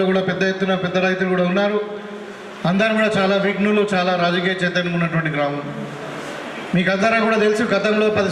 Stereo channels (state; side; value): identical; both; correlation 1.00